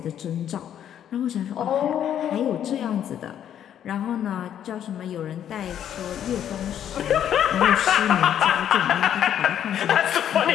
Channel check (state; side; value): quieter; right; 9.9 dB